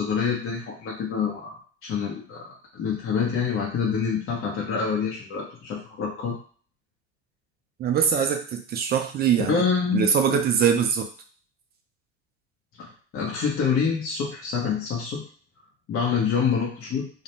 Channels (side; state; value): both; normal; correlation 0.26